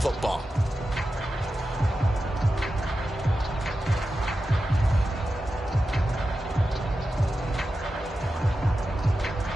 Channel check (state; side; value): normal; both; correlation 0.91